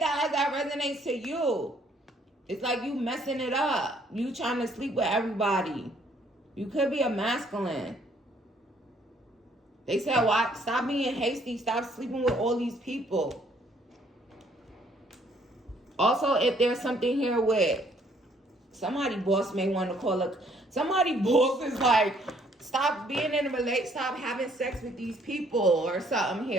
that as that resonates to you. It's like you messing it up. You trying to sleep with everybody. You could be a masculine. They said, "Why? Stop being hasty. Stop sleeping with all these people." Also, if there's something here with somebody boss may want to call it. Somebody boss is like, stop being in a relationship. Stop having sex with these people or something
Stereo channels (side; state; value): both; normal; correlation 0.64